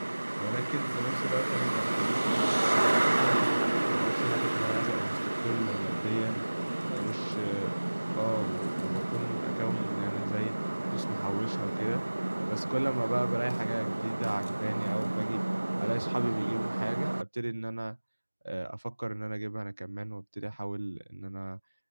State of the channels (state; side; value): inverted; both; correlation -1.00